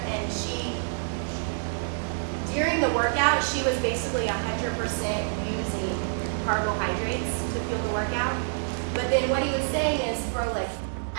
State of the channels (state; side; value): silent; left; digital silence